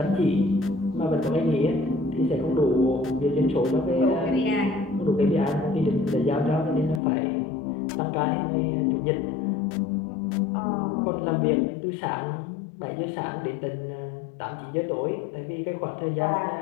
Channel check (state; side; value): drops out; right; at 7.0 s